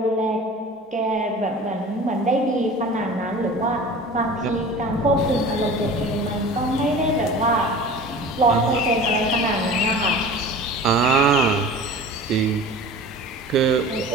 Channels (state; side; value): normal; both; correlation 0.39